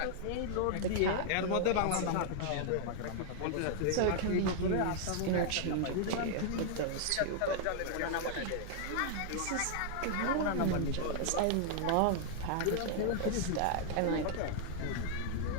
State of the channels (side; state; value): both; different; correlation -0.01